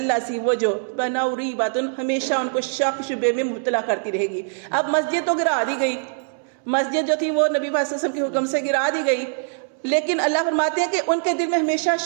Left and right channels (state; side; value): silent; left; 64 dB below the other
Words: سی وہ جو بناؤ ریباتن، ہمیشہ ان کو شک شبے میں مبتلا کرتی رہے گی. اب مسجد تو گرا دی گئی، مسجد جو تھی وہ نبی صلی اللہ علیہ وسلم کے حکم سے گرا دی گئی، لیکن اللہ فرماتے ہیں کہ ان کے دل میں ہمیشہ